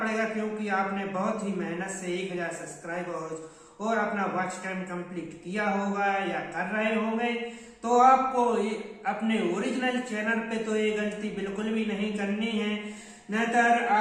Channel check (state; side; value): identical; both; correlation 1.00